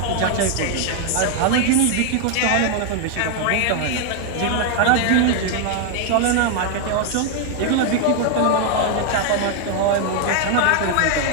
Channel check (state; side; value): different; both; correlation 0.00